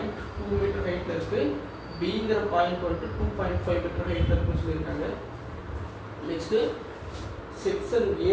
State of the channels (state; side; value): identical; both; correlation 1.00